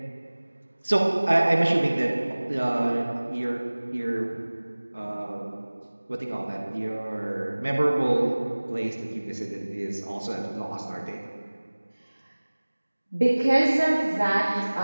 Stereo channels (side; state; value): both; inverted; correlation -1.00